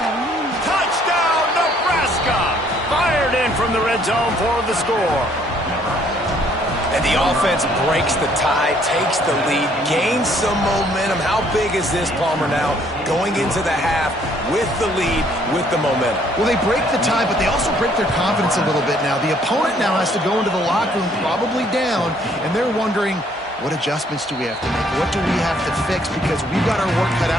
Touchdown, Nebraska! Fired in from the red zone for the score. And the offense breaks the tie, takes the lead, gains some momentum. How big is this, Palmer, now? Going into the half with the lead, with the momentum. Well, they break the tie, but they also break their confidence a little bit now. The opponent now has to go into the locker room, probably down, and they're wondering, what adjustments do we have to make? What do we have to fix? Because we've got our work cut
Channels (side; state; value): both; normal; correlation 0.64